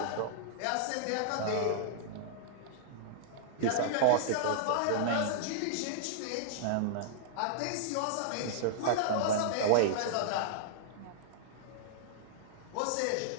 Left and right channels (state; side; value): different; both; correlation -0.01